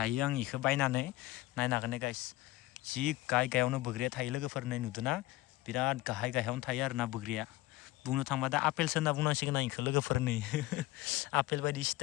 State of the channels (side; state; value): right; quieter; 18.1 dB